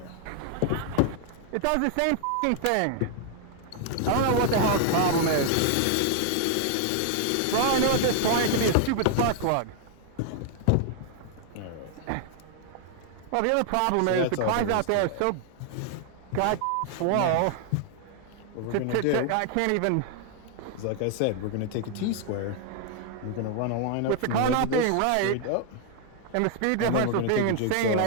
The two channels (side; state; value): both; different; correlation 0.00